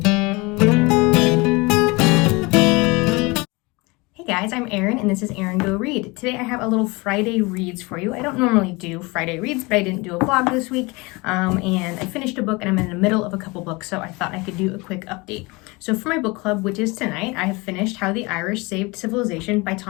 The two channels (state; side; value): quieter; right; 25.3 dB